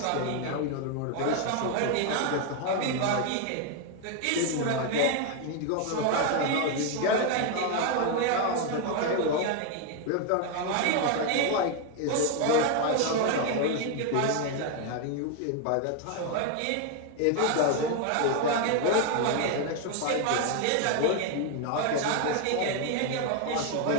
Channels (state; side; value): different; both; correlation 0.01